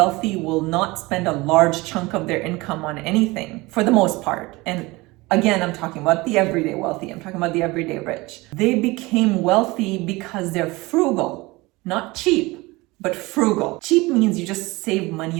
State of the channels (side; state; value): left; quieter; 22.3 dB